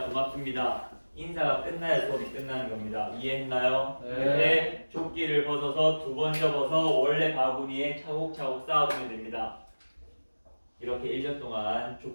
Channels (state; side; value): inverted; both; correlation -1.00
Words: 고맙습니다 인사가 끝나야 수업이 끝나는 겁니다. 이해했나요? 그때 조끼를 벗어서 두 번 접어서 원래 바구니에 차곡차곡 쌓아두면 됩니다. 이렇게 1년 동안